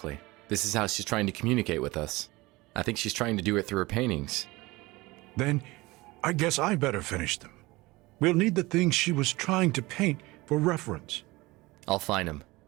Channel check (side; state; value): left; quieter; 21.5 dB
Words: This is how she's trying to communicate with us. I think she's trying to do it through her paintings. Then I guess I better finish them. We'll need the things she was trying to paint for reference. I'll find them.